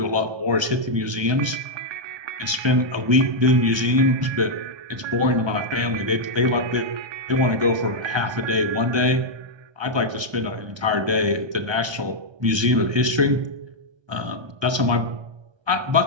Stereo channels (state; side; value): late; left; 1.3 ms